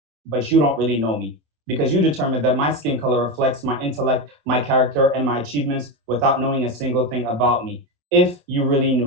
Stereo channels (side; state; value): left; late; 27 ms